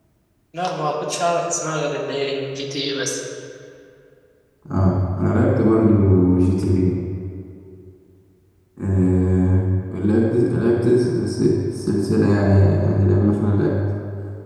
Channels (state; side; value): identical; both; correlation 1.00